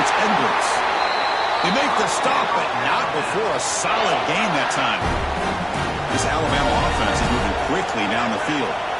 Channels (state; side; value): identical; both; correlation 1.00